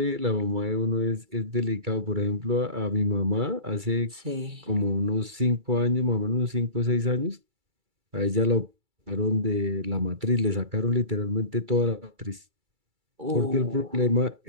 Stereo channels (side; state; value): left; late; 2.3 ms